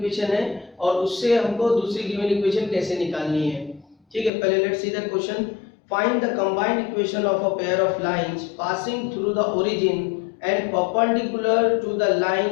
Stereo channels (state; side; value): drops out; right; at 4.3 s